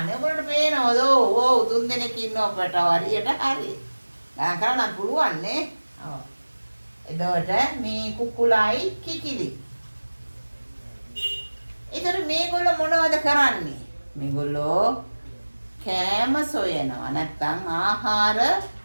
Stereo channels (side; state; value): both; inverted; correlation -1.00